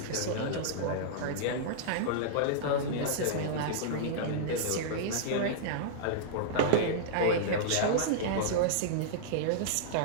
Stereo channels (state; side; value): different; both; correlation -0.02